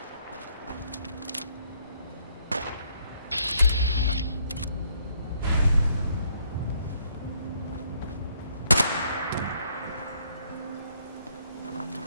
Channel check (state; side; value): inverted; both; correlation -0.69